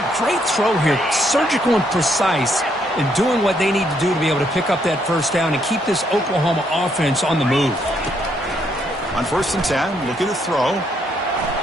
great throw here. Surgical and precise in doing what they need to do to be able to pick up that 1st down and keep this Oklahoma offense on the move. On 1st and 10, looking to throw.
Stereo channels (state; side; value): normal; both; correlation 0.73